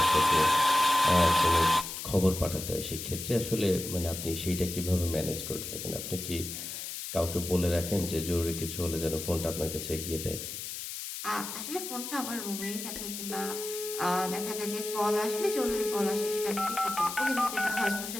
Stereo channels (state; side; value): noise; left; hiss, 7 dB below the sound